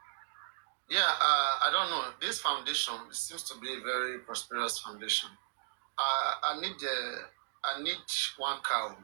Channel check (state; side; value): silent; left; digital silence